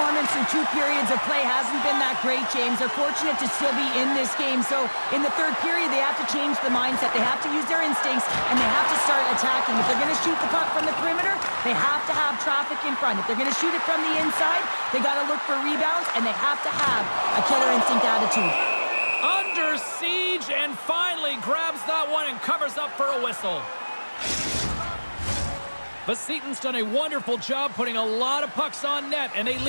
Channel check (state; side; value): inverted; both; correlation -1.00